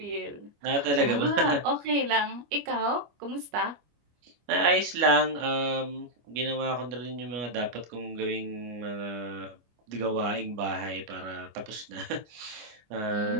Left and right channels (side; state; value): left; late; 25 ms